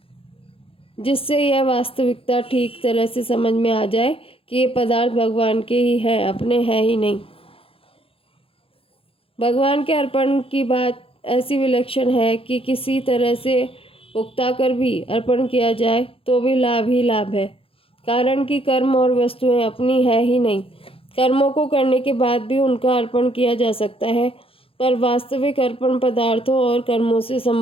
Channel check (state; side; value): late; right; 0.27 ms